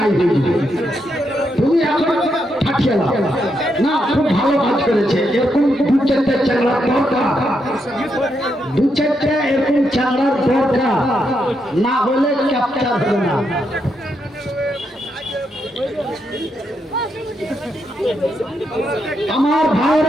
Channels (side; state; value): both; normal; correlation 0.81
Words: হয়ে যাবে। তুমি এখন থাকিয়ে দাও না, খুব ভালো কাজ করেছে। এরকম দু চারটে চ্যাংড়ার দরকার, দু চারটে এরকম চ্যাংড়ার দরকার, না হলে ক্যাপচার হবে না। আমার